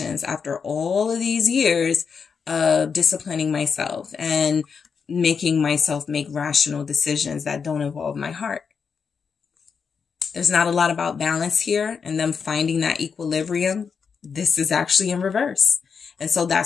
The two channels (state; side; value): quieter; right; 6.0 dB